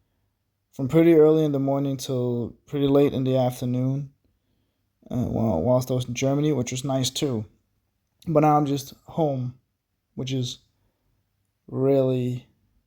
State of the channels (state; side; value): identical; both; correlation 1.00